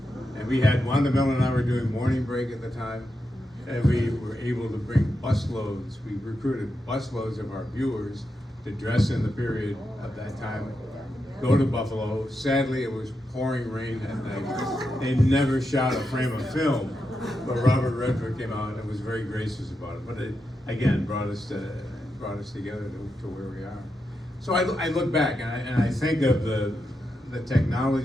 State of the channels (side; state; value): both; normal; correlation 0.86